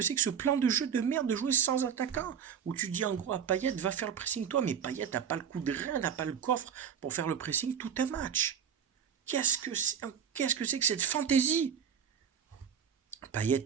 c'est que ce plan de jeu de merde de jouer sans attaquant? Où tu dis en gros à Payet, va faire le pressing toi, mais Payet n'a pas le coup de rein, n'a pas le coffre pour faire le pressing tout un match. Qu'est-ce que c'est que cette fantaisie?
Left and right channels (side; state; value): left; quieter; 7.9 dB